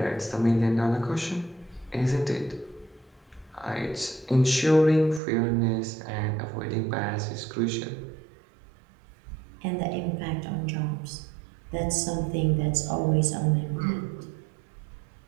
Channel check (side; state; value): left; drops out; at 5.2 s